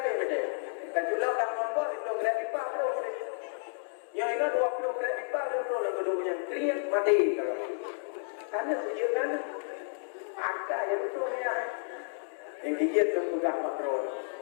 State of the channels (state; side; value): silent; right; digital silence